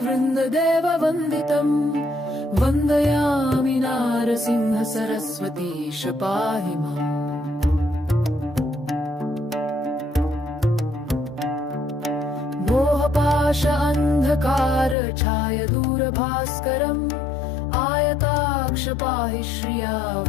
वन्दितम् वन्दयामि नारसिंह सरस्वतीश पाहि माम् मोहपाश अन्धकार छाय दूरभास्करम् आयताक्ष पाहि श्रिया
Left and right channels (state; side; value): drops out; right; at 15.0 s